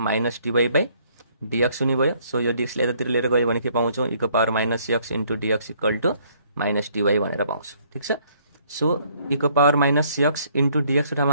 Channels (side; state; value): both; inverted; correlation -0.64